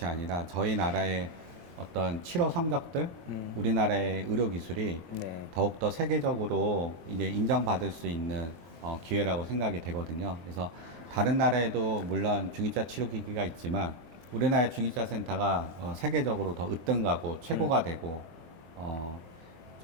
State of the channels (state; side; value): late; left; 23 ms